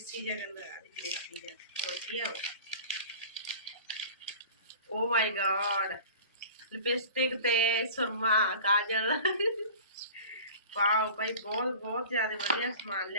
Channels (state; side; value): inverted; both; correlation -0.40